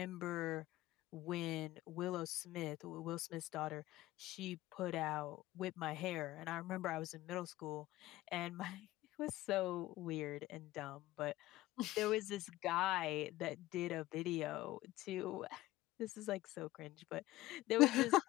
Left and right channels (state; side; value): quieter; right; 16.9 dB